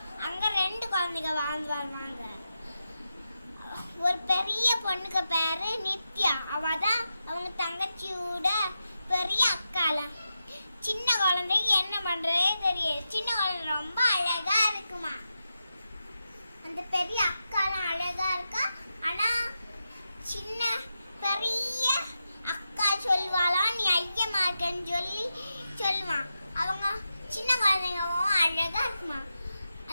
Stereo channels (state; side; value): inverted; both; correlation -0.89